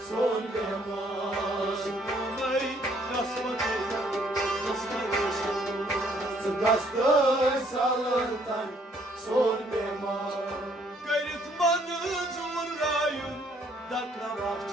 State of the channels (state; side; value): normal; both; correlation 0.65